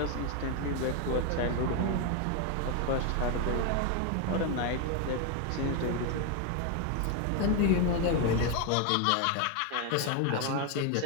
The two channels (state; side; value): different; both; correlation 0.01